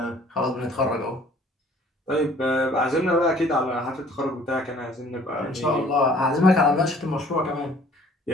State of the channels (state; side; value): normal; both; correlation 0.55